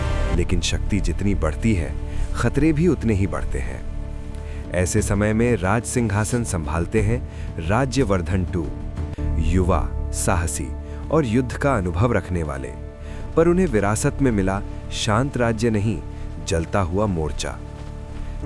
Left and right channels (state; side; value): identical; both; correlation 1.00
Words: लेकिन शक्ति जितनी बढ़ती है, खतरे भी उतने ही बढ़ते हैं। ऐसे समय में राज सिंहासन संभालते हैं राज्यवर्धन टू, युवा, साहसी और युद्ध का अनुभव रखने वाले। पर उन्हें विरासत में मिला शांत राज्य नहीं, जलता हुआ मोर्चा।